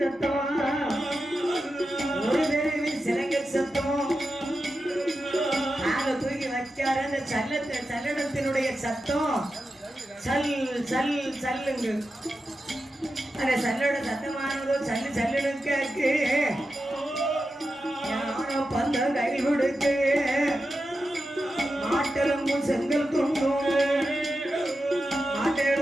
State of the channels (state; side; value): normal; both; correlation 0.90